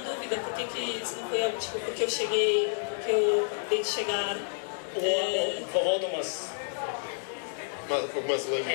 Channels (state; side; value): silent; right; digital silence